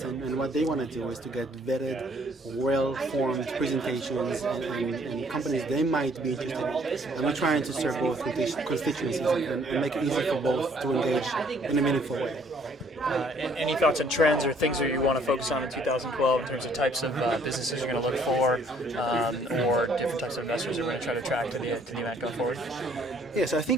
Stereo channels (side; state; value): both; normal; correlation 0.62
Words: And what they want to do is to get vetted, well-formed presentations and companies they might be interested in. And we're trying to serve both constituencies and make it easy for both to engage in a meaningful way. Any thoughts on trends or things that you want to focus on in 2012 in terms of types of businesses you're going to look for, or different types of investors you're going to try to attract to the event going forward? Yes, I